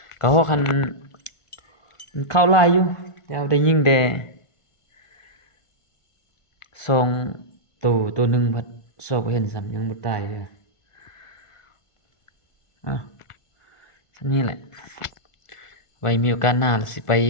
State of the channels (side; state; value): right; late; 1.5 ms